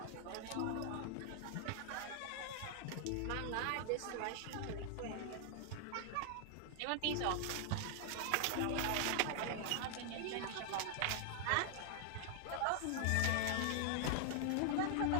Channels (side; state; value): both; different; correlation 0.00